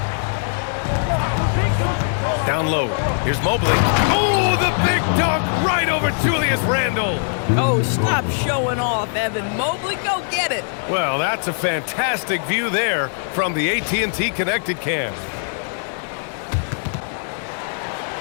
Down low. Here's Mobley. Oh, the big dunk right over Julius Randall. Oh, stop showing off, Evan. Mobley, go get it. Well, that's a fantastic view there from the AT&T Connected Cam.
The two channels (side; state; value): right; silent; digital silence